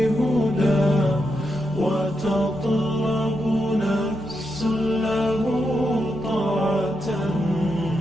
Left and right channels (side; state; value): both; normal; correlation 0.84